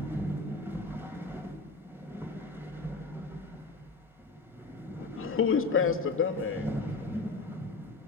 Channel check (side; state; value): right; quieter; 3.9 dB